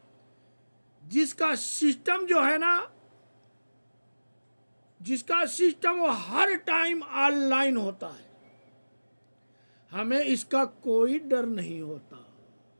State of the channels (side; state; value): both; inverted; correlation -1.00